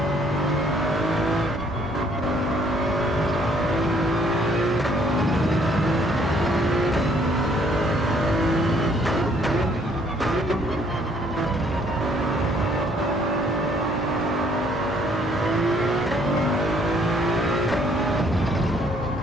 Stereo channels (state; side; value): normal; both; correlation 0.64